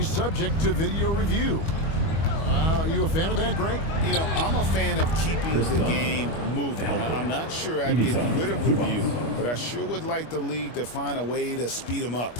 subject to video review. Are you a fan of that, Greg? You know, I'm a fan of keeping the game moving. I'm not sure I'd get rid of review, but I sure would like the league to find a way to speed them up.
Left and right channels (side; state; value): right; late; 25 ms